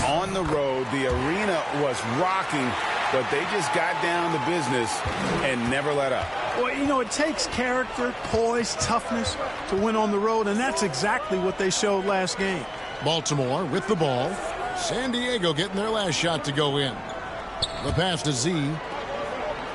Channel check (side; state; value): both; identical; correlation 1.00